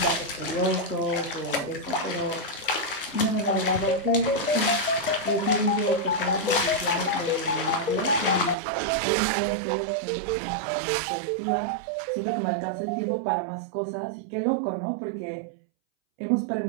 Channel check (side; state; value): left; drops out; at 8.6 s